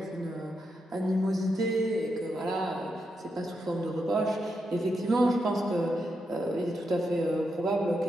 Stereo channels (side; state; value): both; normal; correlation 0.84